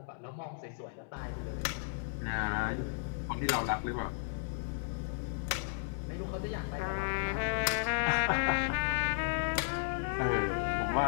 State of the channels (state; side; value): silent; right; digital silence